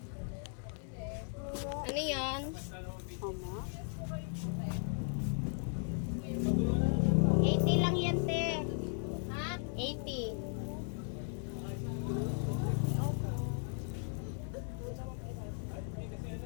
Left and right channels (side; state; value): right; silent; 53 dB below the other